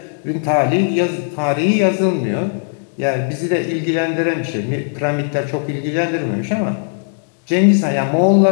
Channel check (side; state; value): right; silent; 68 dB below the other